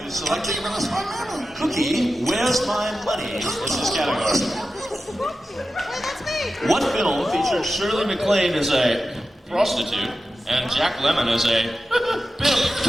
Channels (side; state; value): both; normal; correlation 0.92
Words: is selecting Cookie, where's my money? Is this category. That's me. What film featured Shirley MacLaine as a prostitute and Jack Lemmon as a